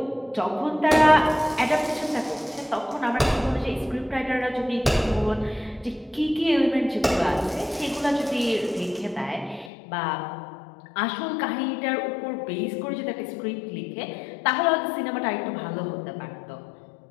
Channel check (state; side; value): drops out; right; at 9.7 s